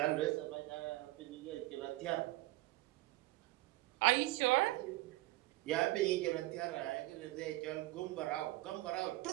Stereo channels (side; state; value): left; quieter; 18.6 dB